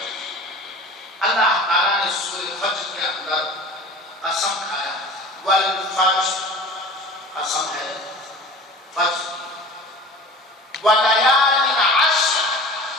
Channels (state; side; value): normal; both; correlation 0.40